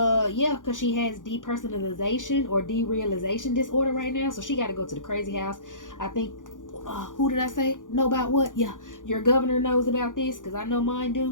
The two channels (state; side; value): late; right; 0.88 ms